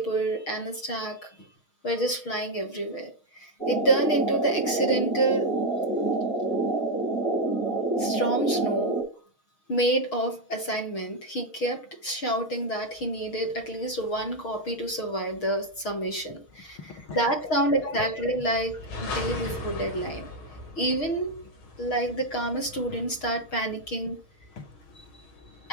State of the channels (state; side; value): late; right; 6.4 ms